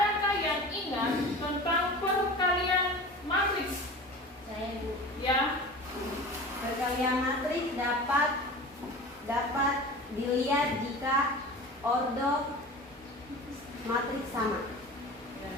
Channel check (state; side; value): normal; both; correlation 0.36